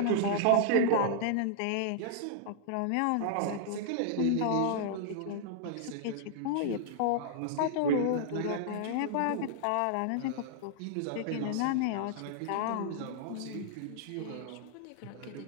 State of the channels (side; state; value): both; different; correlation -0.01